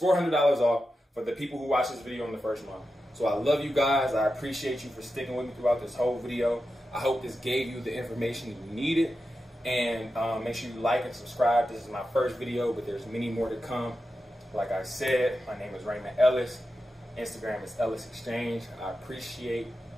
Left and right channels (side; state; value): both; normal; correlation 0.90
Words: off for the people who watch this video in the first month. So I love you guys. I appreciate you for sticking with me throughout this whole video. I hope this gave you the information you needed. And make sure you like and subscribe. This is my first video, but there's many more to come. Like I said, my name is Raymond Ellis. Instagram is Ellis Exchange. I appreciate,